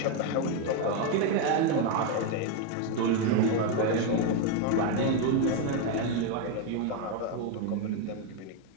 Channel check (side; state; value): both; different; correlation 0.02